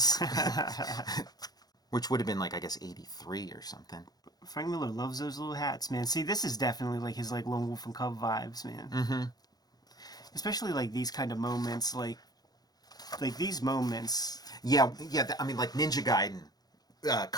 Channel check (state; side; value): late; right; 0.19 ms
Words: which would have been like I guess 83 or something. Frank Miller loves those little hats, man. See, this is definitely like his like Lone Wolf and Cub vibes, man. Mm-hmm. Especially like these kind of moments, like these moments. Yeah. I mean, like Ninja Gaiden,